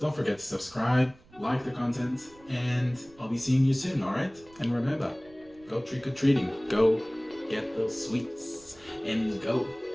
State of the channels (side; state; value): right; noise; rumble, 26 dB below the sound